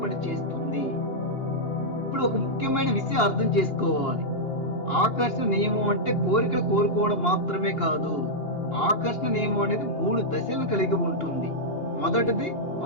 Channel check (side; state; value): right; late; 2.8 ms